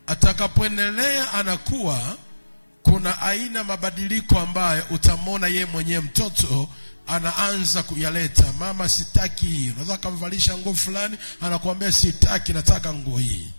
Atakapoendelea anakuwa, kuna aina mabadiliko ambayo utamwona yeye mwenyewe mtoto anaanza kuyaleta. Mama, sitaki hii. Unaweza kumvalisha nguo fulani, anakuambia sitaki, nataka nguo hii.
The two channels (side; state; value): both; inverted; correlation -1.00